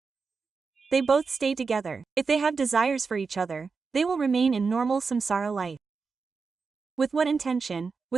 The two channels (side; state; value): left; quieter; 4.9 dB